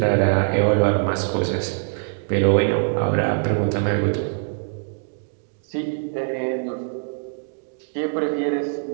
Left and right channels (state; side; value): silent; left; digital silence